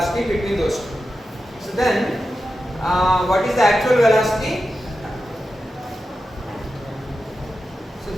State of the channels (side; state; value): both; normal; correlation 0.91